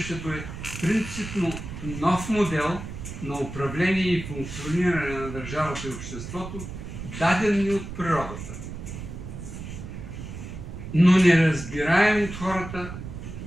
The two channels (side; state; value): right; noise; rumble, 9 dB below the sound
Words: е принципно нов модел на управление и функциониране на държавата и обществото, даден ни от природата, но неразбираем от хората